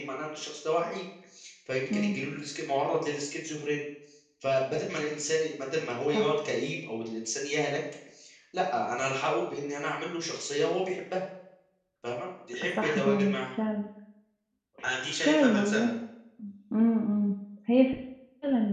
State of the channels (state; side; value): identical; both; correlation 1.00